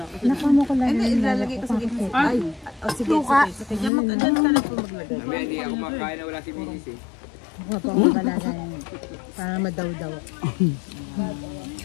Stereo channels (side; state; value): right; drops out; at 3.9 s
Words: Nakamo ko lang. Hindi, ilalagay ko sa gitna. Ay, oh, sige, sige. Sige, mag-adyan ka lang po maglagay. Hindi ako makain na wala si Mrs. eh. Para madaw-daw.